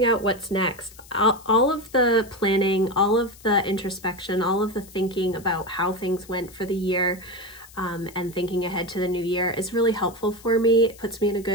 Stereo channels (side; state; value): left; noise; hiss, 22 dB below the sound